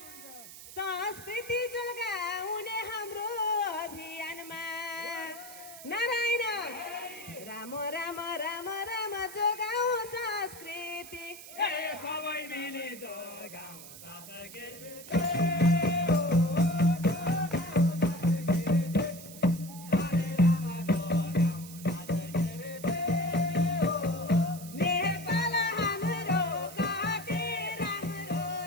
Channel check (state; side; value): noise; right; hiss, 15 dB below the sound